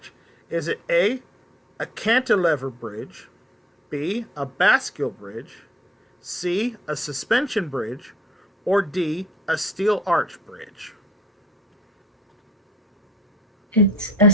Is it A, a cantilever bridge, B, a bascule bridge, C, a suspension bridge, or D, a steel arch bridge? It's a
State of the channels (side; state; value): both; normal; correlation 0.60